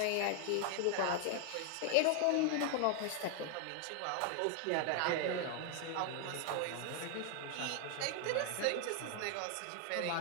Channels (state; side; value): different; both; correlation 0.00